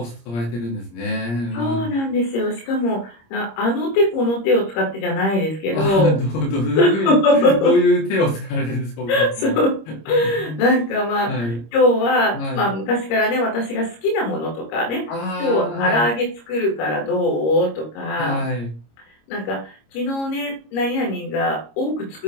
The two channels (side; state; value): right; late; 26 ms